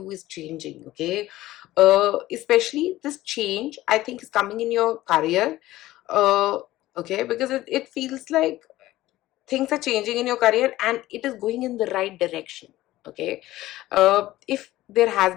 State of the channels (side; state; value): right; quieter; 16.1 dB